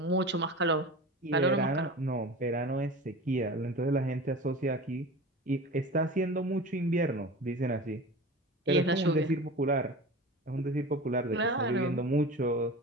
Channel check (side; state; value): both; normal; correlation 0.33